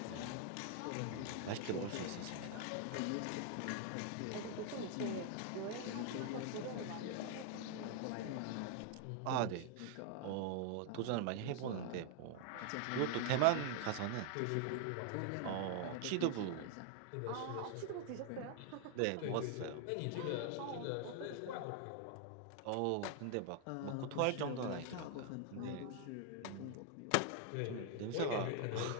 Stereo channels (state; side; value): different; both; correlation 0.00